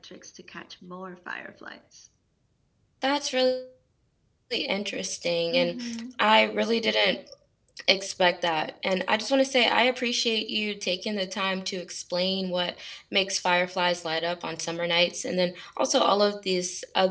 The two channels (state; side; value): identical; both; correlation 1.00